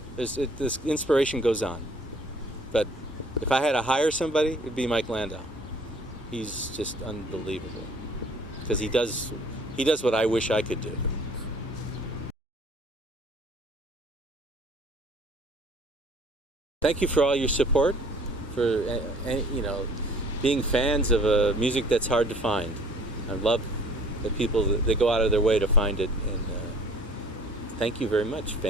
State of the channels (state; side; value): normal; both; correlation 0.54